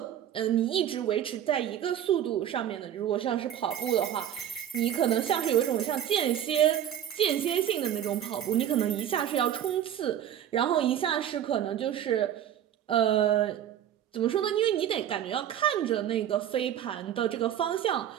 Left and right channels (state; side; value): quieter; left; 10.5 dB